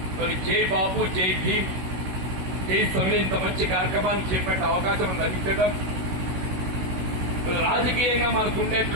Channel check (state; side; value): late; left; 16 ms